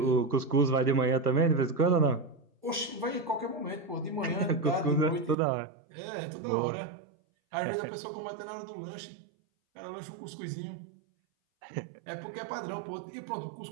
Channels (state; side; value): drops out; left; at 5.4 s